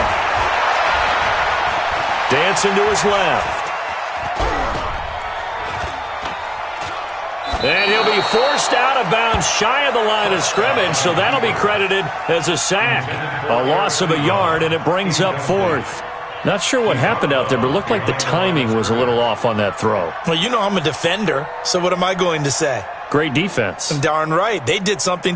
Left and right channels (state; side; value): identical; both; correlation 1.00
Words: Dancing to his left. And he'll be forced out of bounds shy of the line of scrimmage, so that'll be credited as a sack. A loss of a yard, and it brings up 4th. Not sure what happened out there, but it looked like the timing was a little off on that throw. Well, you know I'm a defender, so what am I going to say? Great defense. Darn right. They did something